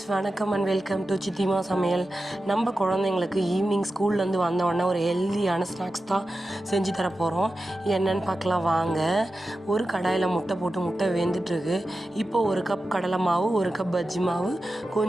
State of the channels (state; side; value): normal; both; correlation 0.92